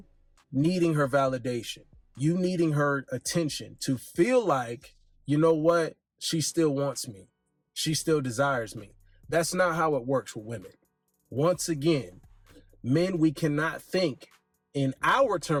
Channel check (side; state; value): both; identical; correlation 1.00